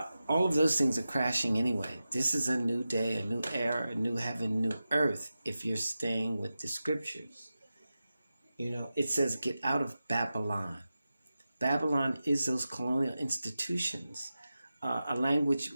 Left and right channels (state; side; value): inverted; both; correlation -0.93